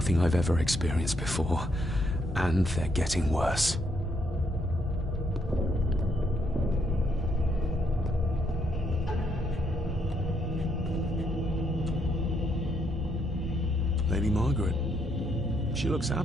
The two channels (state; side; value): normal; both; correlation 0.74